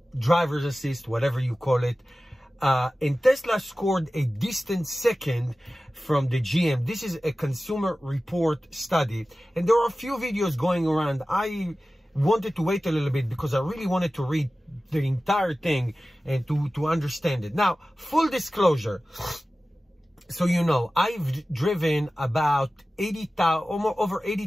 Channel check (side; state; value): both; normal; correlation 0.96